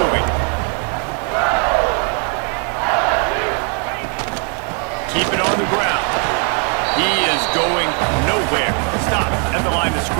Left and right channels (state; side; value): quieter; left; 39.3 dB